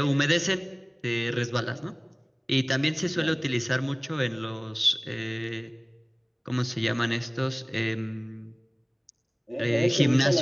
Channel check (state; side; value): identical; both; correlation 1.00